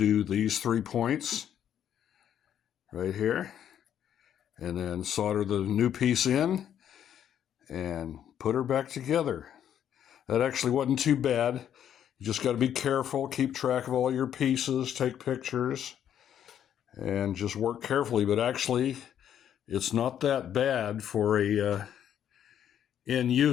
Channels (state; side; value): quieter; right; 9.8 dB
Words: these 3 points right here, and then solder the new piece in and put her back together. That actually wasn't too bad. You just got to be careful, keep track of all your pieces, take pictures, and just work carefully. But actually, it's not that bad for a end